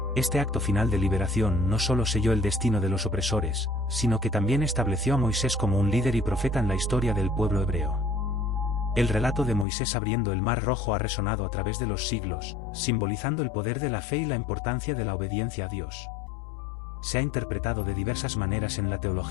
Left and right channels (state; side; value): drops out; right; at 9.7 s